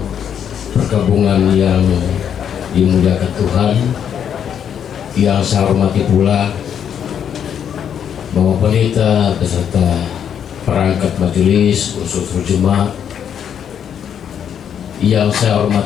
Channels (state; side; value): quieter; right; 8.6 dB